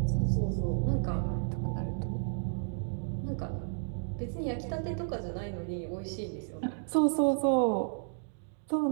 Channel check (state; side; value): silent; left; digital silence